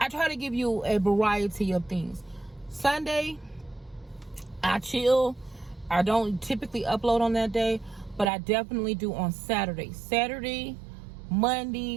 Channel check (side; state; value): left; drops out; at 8.3 s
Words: try to give you a variety of things. Sunday, I chill. I don't typically upload on that day, but I definitely do on Saturday. Saturday,